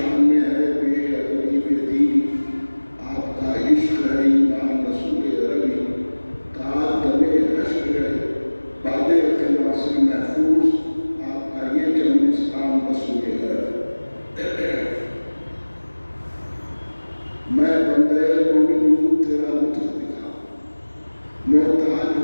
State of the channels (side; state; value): both; inverted; correlation -1.00